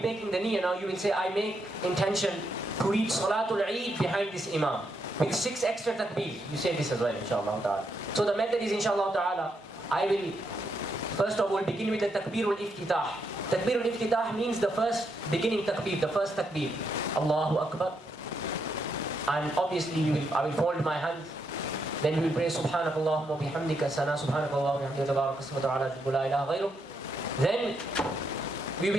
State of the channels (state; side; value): normal; both; correlation 0.79